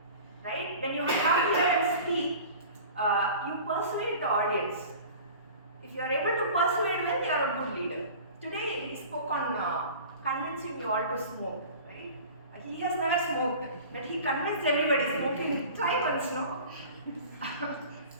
Right? When you come here and speak, you persuade the audience. If you are able to persuade well, you are a good leader. Today, he spoke on convincing you all to smoke. Right? He has never smoked, but he convinced everybody smoking. Try once, no?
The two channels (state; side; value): inverted; both; correlation -0.41